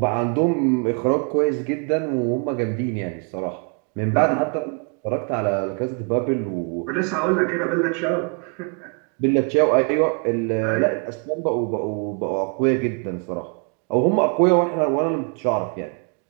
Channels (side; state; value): left; quieter; 38.6 dB